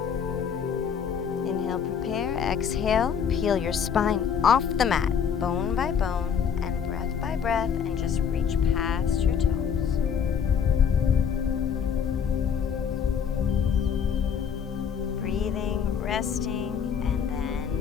Inhale, prepare, exhale, peel your spine off the mat, bone by bone, and breath by breath, and just reach past your toes. Breathing, resting, and then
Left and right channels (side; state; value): right; quieter; 7.3 dB